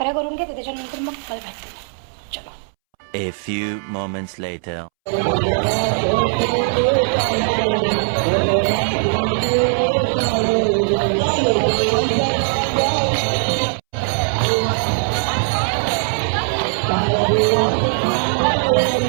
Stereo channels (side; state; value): left; silent; 66 dB below the other